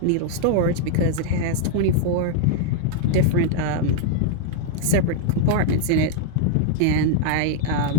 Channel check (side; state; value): both; different; correlation 0.00